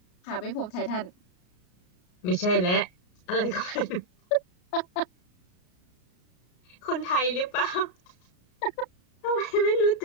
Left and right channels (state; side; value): late; right; 33 ms